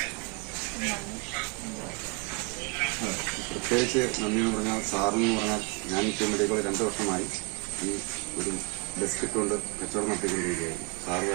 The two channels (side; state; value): left; quieter; 31.9 dB